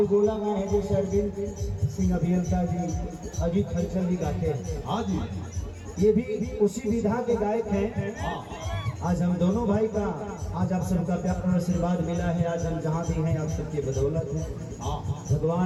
गाए हैं, जैसे अरविंद सिंह अभियंता जी, अजीत हलचल जी गाते हैं। हाँ जी, ये भी उसी विधा के गायक हैं। आज हम दोनों भाई का आज आप सबका प्यार और आशीर्वाद मिला है। आज हम जहाँ भी हैं आप सबके बदौलत है।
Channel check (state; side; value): identical; both; correlation 1.00